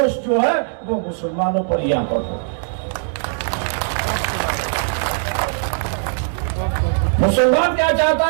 जो है वो मुसलमानों पर यहां पर हो। मुसलमान क्या चाहता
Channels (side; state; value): left; silent; digital silence